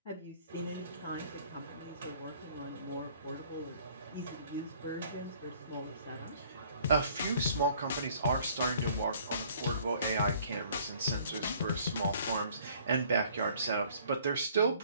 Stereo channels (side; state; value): both; inverted; correlation -0.57